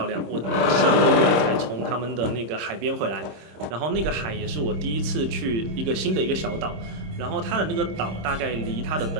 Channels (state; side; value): late; left; 26 ms